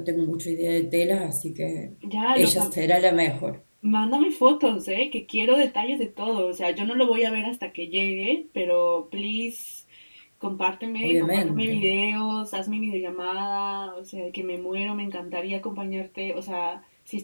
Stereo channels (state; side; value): inverted; both; correlation -1.00